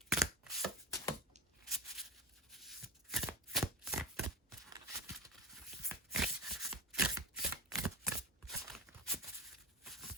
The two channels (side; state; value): both; normal; correlation 0.25